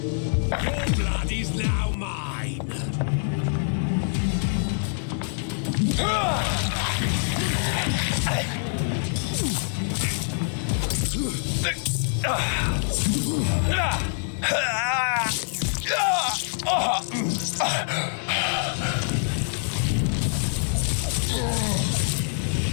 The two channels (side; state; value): right; silent; digital silence